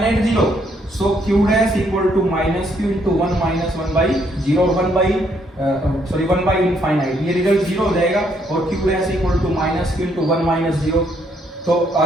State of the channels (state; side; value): normal; both; correlation 0.71